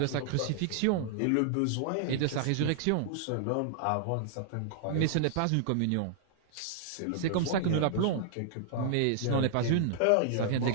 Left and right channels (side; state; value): both; different; correlation -0.01